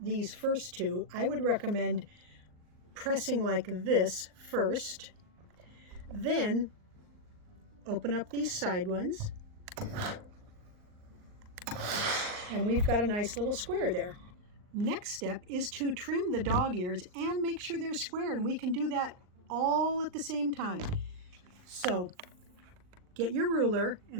first two, I would recommend pressing like this first, then open up these side ones, and we've got a nice little square there. Next step is to trim the dog ears and make sure they're square, and we can do that all at the same time. So get your ruler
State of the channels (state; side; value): late; left; 39 ms